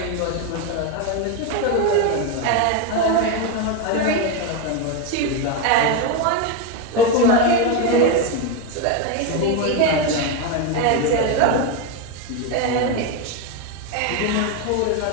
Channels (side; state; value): both; different; correlation 0.03